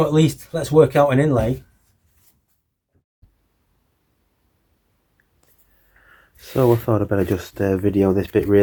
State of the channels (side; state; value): both; identical; correlation 1.00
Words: at least let's work out an inlay. So I thought I'd better just video this bit